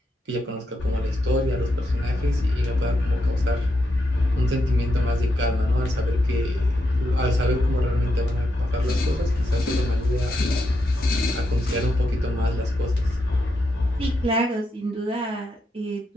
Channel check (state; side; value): normal; both; correlation 0.82